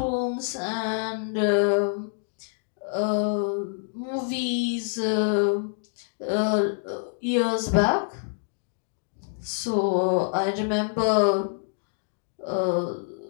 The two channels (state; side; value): silent; right; digital silence